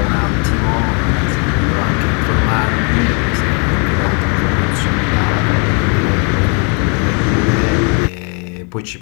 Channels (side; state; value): right; quieter; 36.7 dB